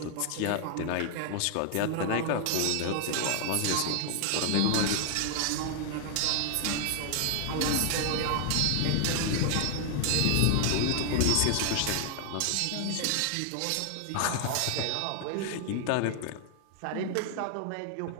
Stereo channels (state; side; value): different; both; correlation 0.00